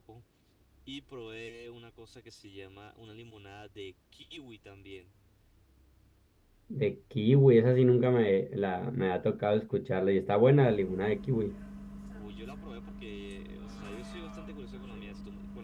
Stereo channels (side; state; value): both; identical; correlation 1.00